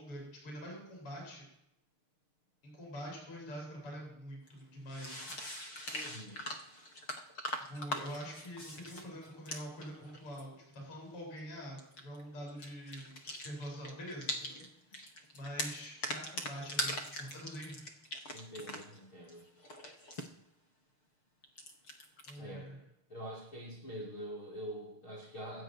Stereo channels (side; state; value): right; late; 6.6 ms